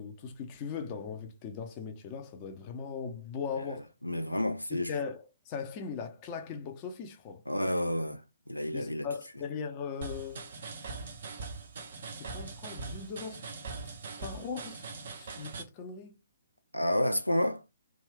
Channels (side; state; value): both; inverted; correlation -0.77